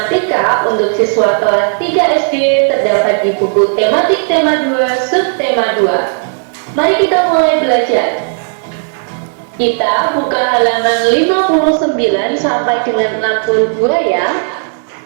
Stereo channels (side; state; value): left; silent; digital silence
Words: untuk siswa kelas 3 SD terdapat di buku tematik tema 2 subtema 2. Mari kita mulai belajar. Kita buka halaman 59 sampai dengan 62 ya.